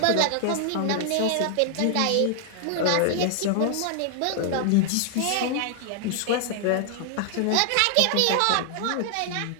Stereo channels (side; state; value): both; different; correlation 0.00